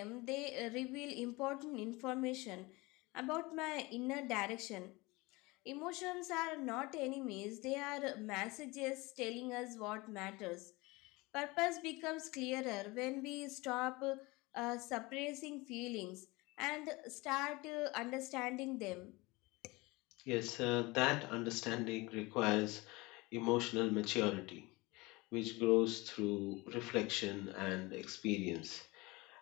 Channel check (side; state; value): right; quieter; 23.3 dB